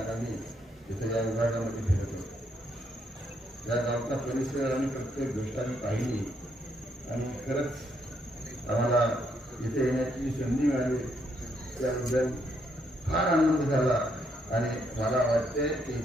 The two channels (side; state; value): both; normal; correlation 0.74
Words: तिथे या विभागामध्ये फिरत होतो. या गावचा परिसर आणि प्रत्येक गोष्ट आम्ही पाहिली आणि खरंच आम्हाला इथे येण्याची संधी मिळाली त्याबद्दल फार आनंद झाला. आणि मला वाटते की